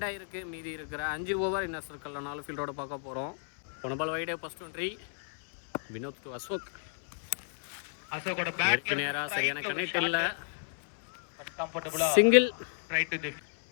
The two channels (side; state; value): right; silent; 56 dB below the other